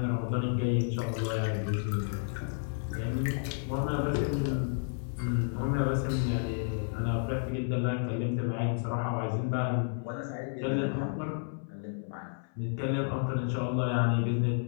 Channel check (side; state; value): right; silent; 57 dB below the other